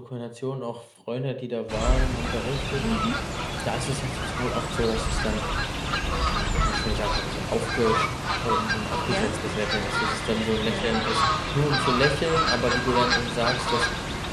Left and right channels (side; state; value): both; identical; correlation 1.00